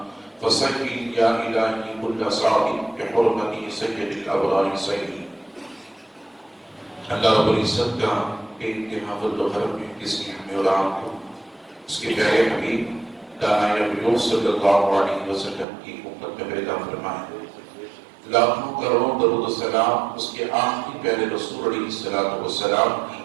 فصل يا إلهي كل صاعد بحرمة سيد الأبرار سيدي. اللہ رب العزت کا انتہا فضل و کرم ہے جس نے ہمیں اور آپ کو اس کے پیارے حبیب دانائے نبی صلی اللہ علیہ وسلم کی امت میں پیدا فرمائے. لاکھوں کروڑوں درود و سلام اس کے آخری پیارے رسول علیہ السلام کی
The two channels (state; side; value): drops out; left; at 15.7 s